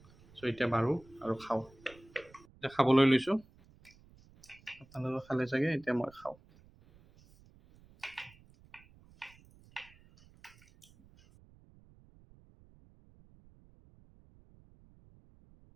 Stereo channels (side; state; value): right; noise; rumble, 26 dB below the sound